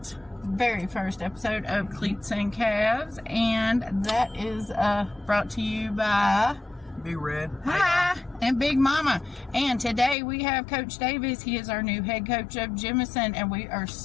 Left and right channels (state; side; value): drops out; right; at 10.2 s